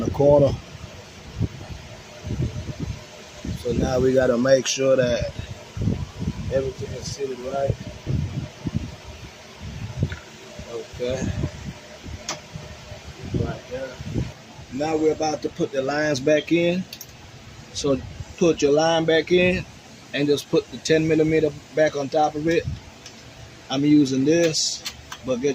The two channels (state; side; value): identical; both; correlation 1.00